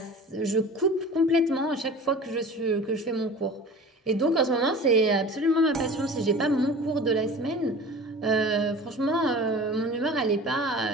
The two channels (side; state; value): both; normal; correlation 0.40